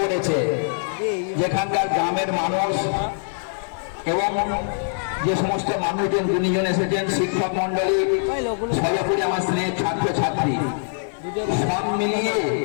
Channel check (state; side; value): silent; right; digital silence